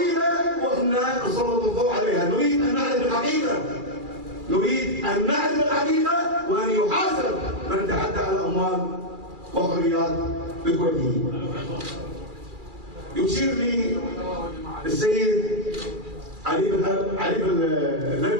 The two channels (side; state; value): left; late; 2.4 ms